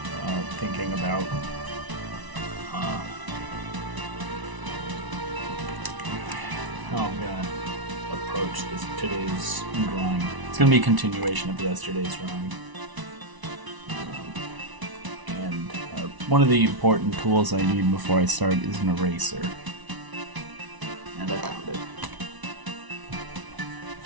thinking about how I'm gonna approach today's drawing. It's gonna be a continuation of yesterday's drawing. One of the important tools I need before I start is an eraser. And I found it.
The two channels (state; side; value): late; left; 1.0 ms